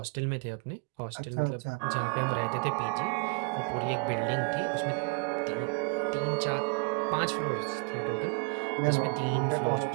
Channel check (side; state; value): left; quieter; 35.9 dB